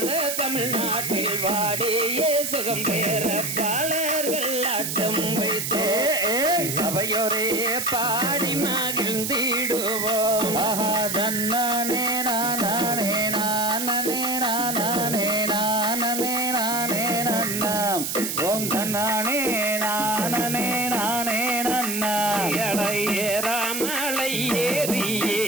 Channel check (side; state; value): right; noise; hiss, 3 dB below the sound